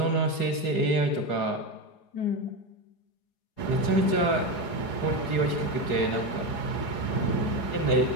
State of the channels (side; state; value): right; late; 4.8 ms